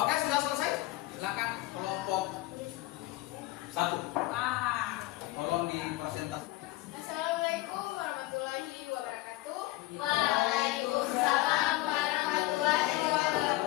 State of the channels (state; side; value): quieter; right; 18.4 dB